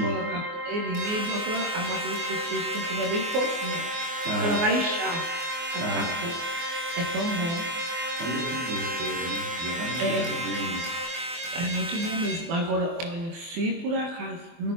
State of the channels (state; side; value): late; left; 24 ms